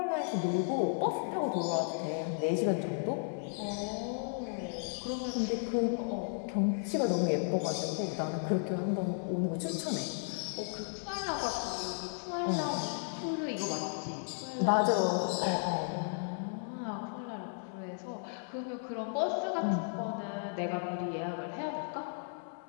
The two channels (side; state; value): right; silent; digital silence